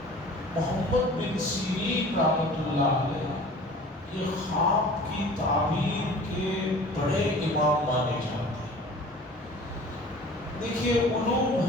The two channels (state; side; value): normal; both; correlation 0.44